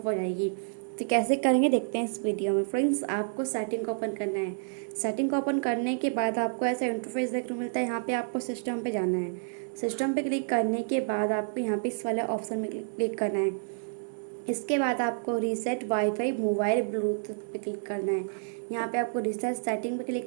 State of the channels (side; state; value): left; silent; digital silence